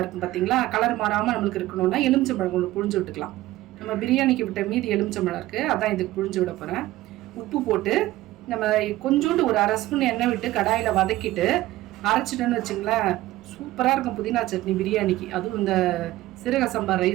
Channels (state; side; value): quieter; left; 16.5 dB